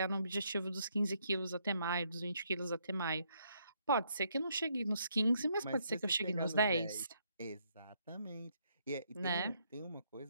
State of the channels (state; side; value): inverted; both; correlation -0.73